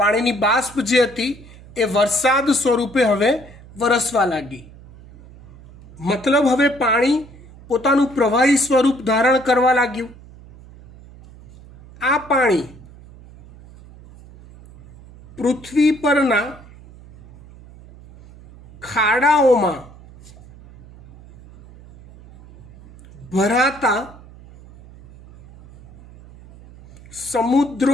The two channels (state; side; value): noise; right; hum, 21 dB below the sound